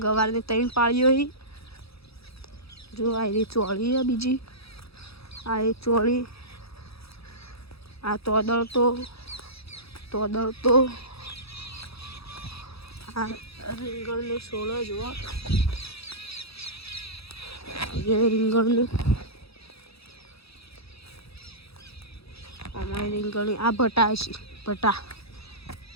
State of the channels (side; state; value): right; late; 0.77 ms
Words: ગવારની 3 પાળીઓ હી જો આ એની ચોળી હે બીજી આ એ ચોળી આ તોદળ તો આ રીંગણનો છોડો જુઓ એ રીંગણનું આમાં રીંગણી આ ભટા છે ભટા